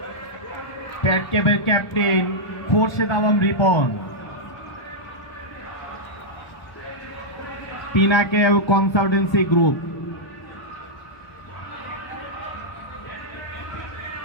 প্যাট ক্যাপের captain Khorshed Alam Ripon. Pinnacle consultancy group.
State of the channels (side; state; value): right; late; 1.0 ms